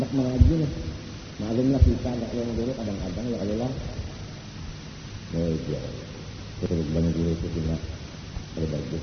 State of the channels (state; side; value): identical; both; correlation 1.00